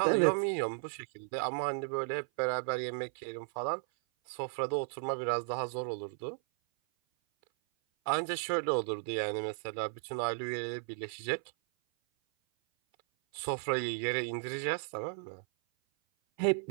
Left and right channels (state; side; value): silent; left; 55 dB below the other